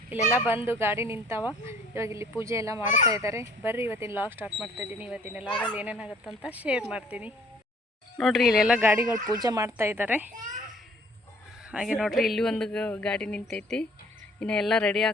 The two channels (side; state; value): both; normal; correlation 0.56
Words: ಇಲ್ಲೆಲ್ಲ ಬಂದು ಗಾಡಿ ನಿಂತಾವ, ಇವಾಗ ಇಲ್ಲಿ ಪೂಜೆ ಎಲ್ಲ ಮಾಡ್ತಾ ಇದ್ದಾರೆ. ಬರ್ರಿ ಇವತ್ತಿನ ಲಾಗ್ ಸ್ಟಾರ್ಟ್ ಮಾಡ್ತಾಯಿದ್ದೀನಿ. ಇವತ್ತಿನ ಲಾಗಲ್ಲಿ ಏನೇನಾಗುತ್ತಂತ ಶೇರ್ ಮಾಡ್ತೀನಿ ನೋಡ್ರಿ. ಇಲ್ಲೆಲ್ಲ ಗಾಡಿಗಳು ಪೂಜೆ ಮಾಡ್ತಾ ಇದ್ದಾರೆ. ಹಾಗೆ ನೋಡ್ರಿ ಇಲ್ಲಿ ಒಂದು ಗಾಡಿ ನಿಂತೈತಿ, ಇನ್ನು ಎಲ್ಲ ರೆಡಿ